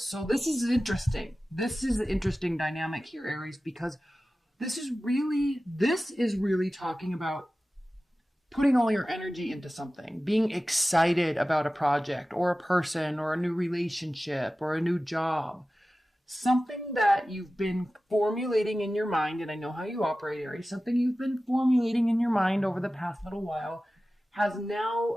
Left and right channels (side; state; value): both; normal; correlation 0.96